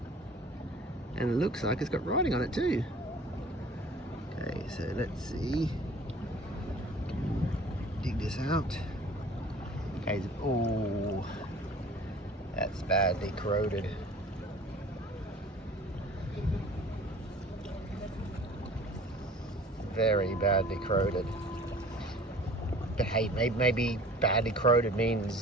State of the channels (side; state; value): both; normal; correlation 0.47